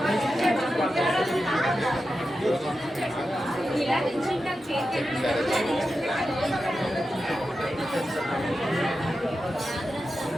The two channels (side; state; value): both; normal; correlation 0.91